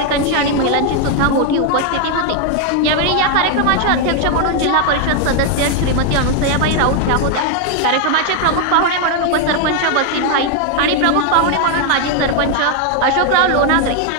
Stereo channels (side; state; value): both; different; correlation 0.00